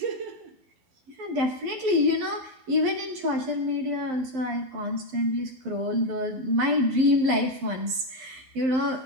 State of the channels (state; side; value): late; left; 12 ms